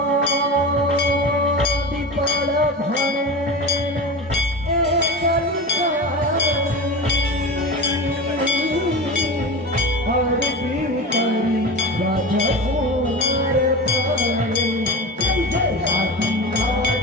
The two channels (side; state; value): both; normal; correlation 0.27